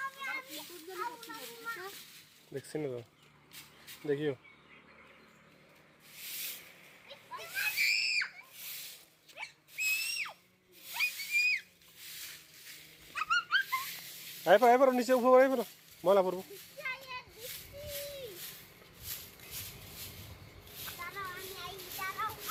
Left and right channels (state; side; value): identical; both; correlation 1.00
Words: দেখছি না তো, দেখিও। আয় পারো নিচে, উপর আয় পারো, ময়লা পড়বো।